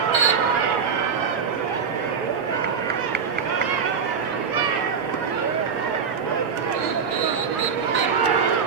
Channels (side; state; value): left; quieter; 6.3 dB